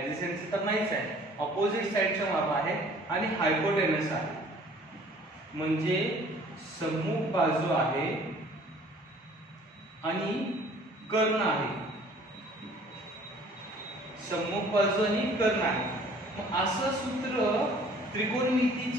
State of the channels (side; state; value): both; normal; correlation 0.53